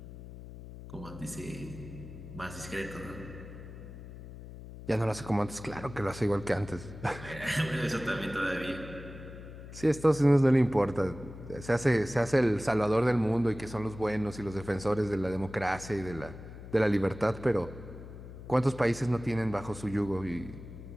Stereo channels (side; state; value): left; noise; hum, 13 dB below the sound